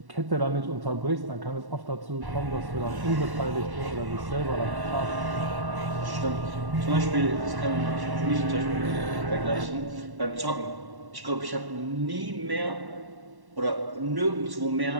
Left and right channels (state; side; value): late; left; 1.1 ms